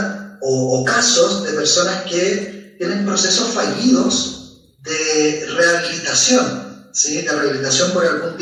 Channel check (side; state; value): both; identical; correlation 1.00